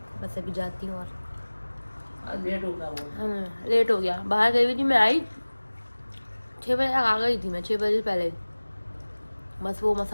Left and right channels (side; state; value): both; inverted; correlation -1.00